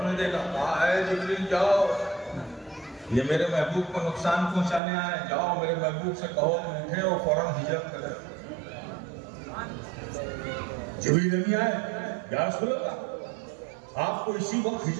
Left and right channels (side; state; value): left; drops out; at 4.8 s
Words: نے دیکھا، کہا اے جبریل جاؤ، یہ میرے محبوب کو نقصان پہنچانے آئے، جاؤ میرے محبوب سے کہو کہ اٹھے اور فوراً ہجرت کرے۔ جبریل نہیں آئے، یا رسول اللہ آپ کو اسی وقت